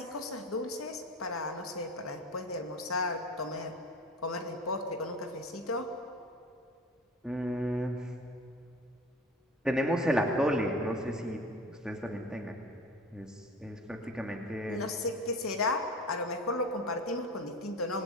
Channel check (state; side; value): normal; both; correlation 0.36